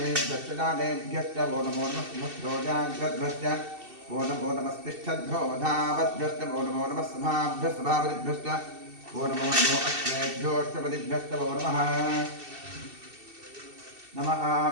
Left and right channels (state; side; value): late; left; 2.7 ms